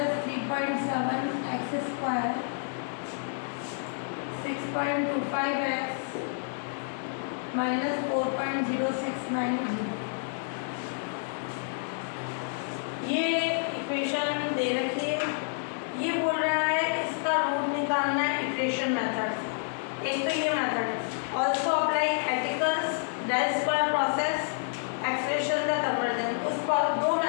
3.7 x square 6.25 x minus 4.0690, ये इक्वेशन दे रखी है। ये बोल रहा है इसका रूट निकालना है इटरेशन मेथड। एक तो ये method also apply Aitken's del square process expression the convergence. उस दो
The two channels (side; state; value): right; silent; 58 dB below the other